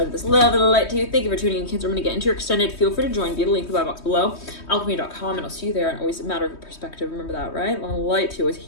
of this. Love and light to you. Thank you for tuning in, Cancer. I'm going to get into your extended. Feel free to join via the link in the bio box below. Alchemy.com, and I'll see you there. And always a matter of perspective. Remember that, right? Love and light to you. Always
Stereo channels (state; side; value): late; right; 3.2 ms